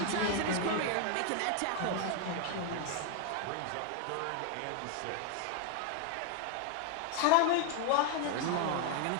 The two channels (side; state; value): both; different; correlation 0.01